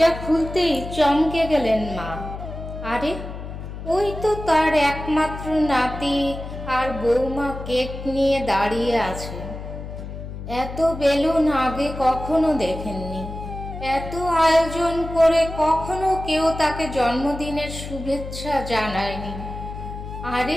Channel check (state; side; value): noise; left; hum, 9 dB below the sound